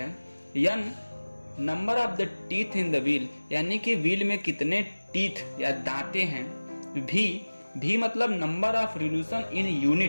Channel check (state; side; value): inverted; both; correlation -1.00